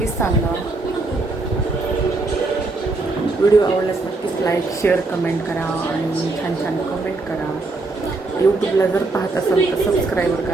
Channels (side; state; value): left; quieter; 3.3 dB